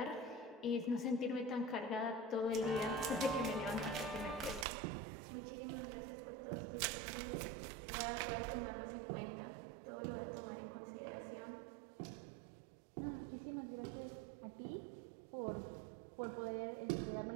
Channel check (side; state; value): left; drops out; at 4.7 s